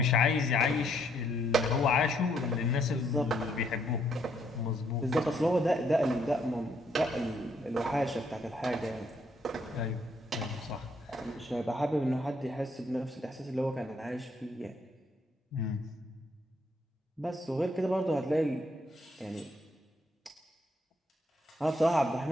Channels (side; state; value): both; normal; correlation 0.71